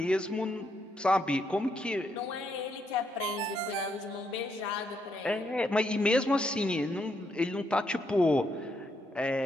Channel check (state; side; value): normal; both; correlation 0.77